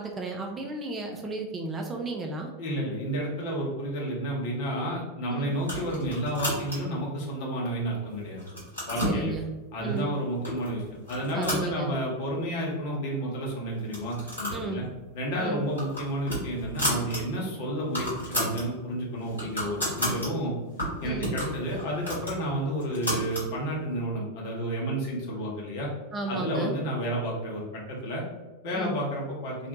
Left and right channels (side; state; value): both; normal; correlation 0.00